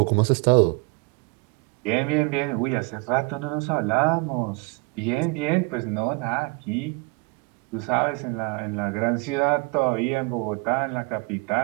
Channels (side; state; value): left; quieter; 28.4 dB